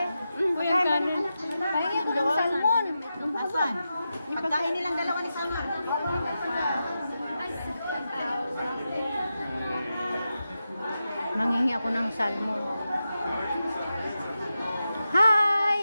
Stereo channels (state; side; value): inverted; both; correlation -0.89